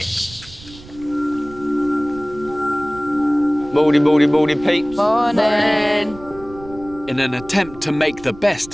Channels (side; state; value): right; noise; rumble, 19 dB below the sound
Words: Morning, peeps. Morning. In an attempt to make the best